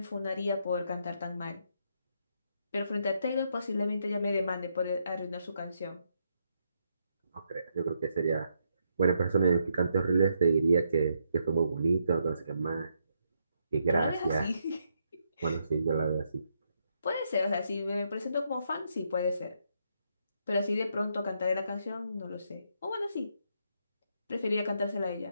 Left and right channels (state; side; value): inverted; both; correlation -0.77